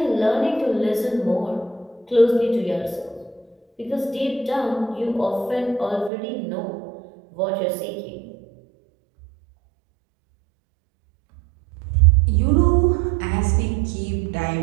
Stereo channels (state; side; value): drops out; left; at 6.1 s